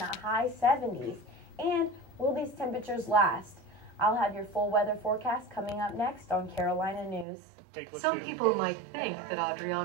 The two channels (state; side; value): drops out; left; at 7.2 s